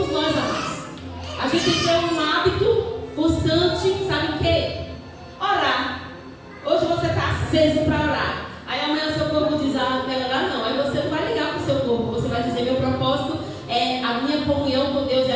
nós, amados. A gente tem que ter um hábito constante, sabe o quê? Orar. Hoje você está aceso para orar. Aí amanhã o seu corpo diz, não quero orar não. Aí você não vai ligar para o seu corpo. Você vai dizer, meu propósito é a minha comunhão com Deus,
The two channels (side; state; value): both; identical; correlation 1.00